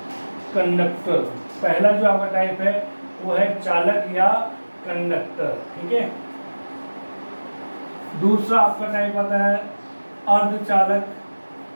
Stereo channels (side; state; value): both; inverted; correlation -1.00